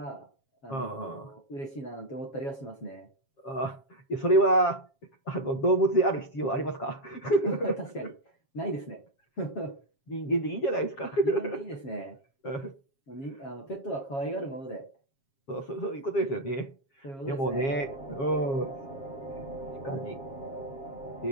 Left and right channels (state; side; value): late; right; 7.3 ms